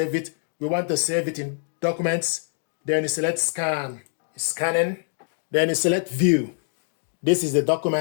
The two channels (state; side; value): silent; right; 62 dB below the other